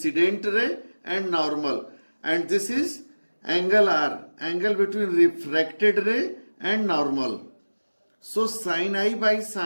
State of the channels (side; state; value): both; inverted; correlation -1.00